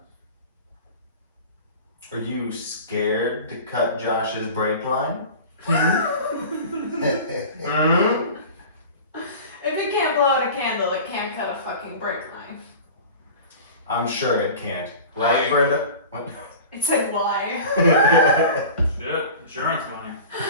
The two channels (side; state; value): both; inverted; correlation -0.37